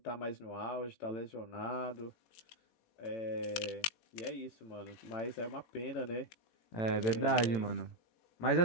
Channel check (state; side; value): late; right; 18 ms